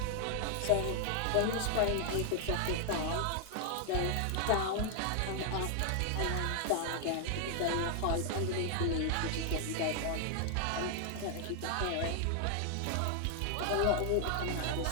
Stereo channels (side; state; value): both; different; correlation 0.00